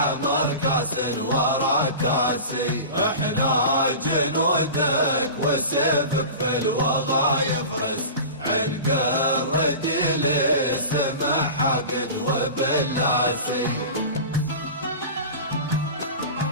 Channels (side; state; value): both; inverted; correlation -0.33